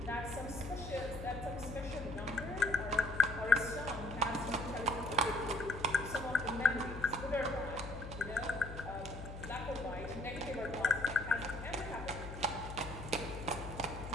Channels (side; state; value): left; noise; hum, 9 dB below the sound